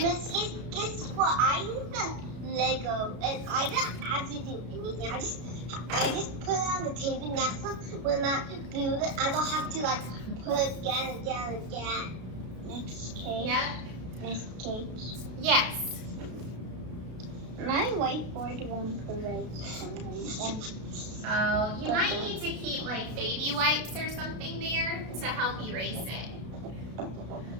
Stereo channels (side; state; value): left; late; 33 ms